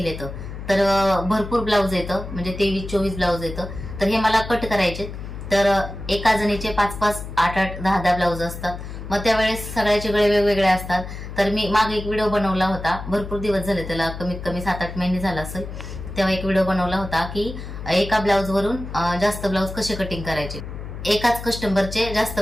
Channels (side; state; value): left; noise; hum, 9 dB below the sound